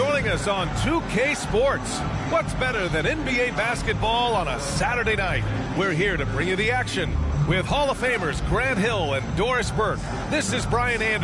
us on 2K Sports. What's better than NBA basketball on a Saturday night? We're here to bring you the action with Hall of Famers Grant Hill and Doris Burke. This is Brian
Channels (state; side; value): identical; both; correlation 1.00